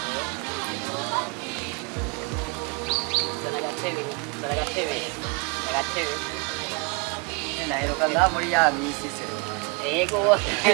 Agatebe. Naheruka ngaha muri ya misi se. Ego.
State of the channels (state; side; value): quieter; left; 31.6 dB